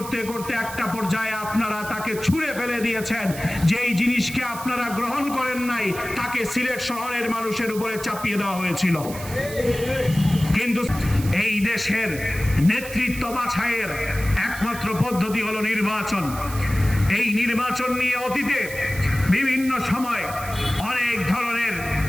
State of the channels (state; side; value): noise; right; hiss, 13 dB below the sound